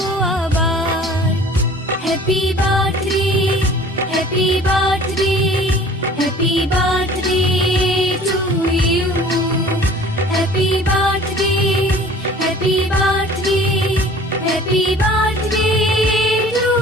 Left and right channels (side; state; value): both; normal; correlation 0.47